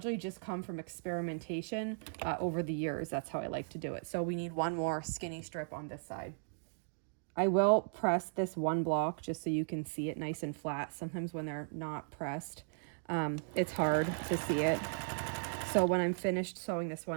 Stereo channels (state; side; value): silent; left; digital silence